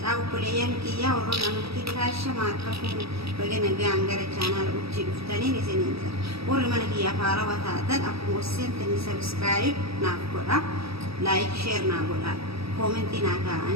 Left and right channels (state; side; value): late; left; 0.77 ms